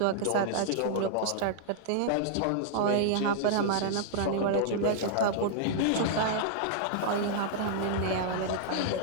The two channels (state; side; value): different; both; correlation -0.01